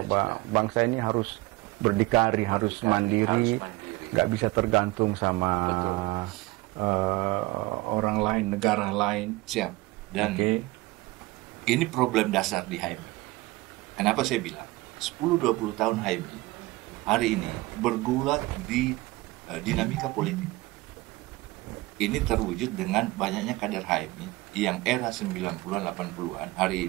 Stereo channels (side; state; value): left; quieter; 20.7 dB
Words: bangsa ini harus berdikari, harus mandiri, nggak bisa tergantung sama orang lain, negara lain. Siap. Dan ini problem dasar di HMI. Kenapa saya bilang 10-20 tahun HMI hari ini bergulat di dinamika politik. Ini terwujud dengan banyaknya kader HMI yang era 90-an, 80-an hari